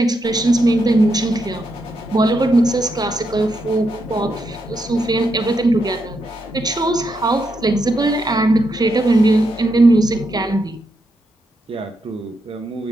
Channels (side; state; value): both; normal; correlation 0.82